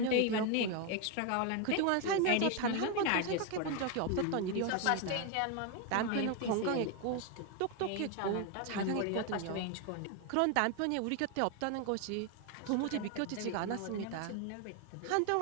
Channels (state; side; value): different; both; correlation 0.01